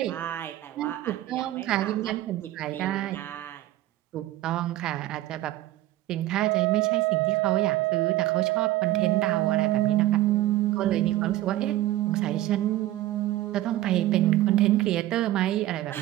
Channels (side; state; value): left; quieter; 15.2 dB